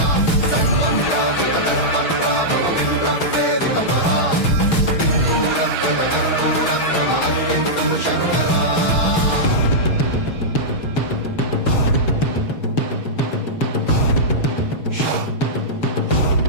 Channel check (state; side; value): late; right; 6.2 ms